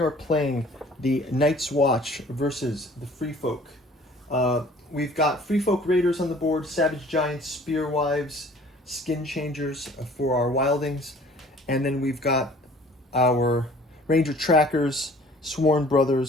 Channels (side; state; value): both; normal; correlation 0.52